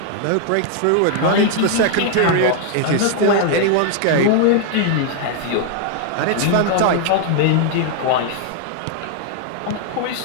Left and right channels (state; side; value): different; both; correlation 0.00